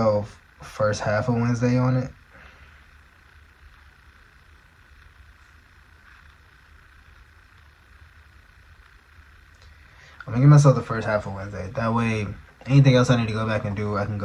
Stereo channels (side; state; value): both; identical; correlation 1.00